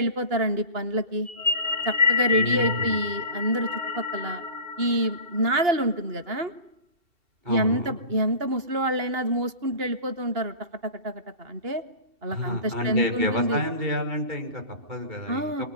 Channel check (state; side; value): late; left; 2.9 ms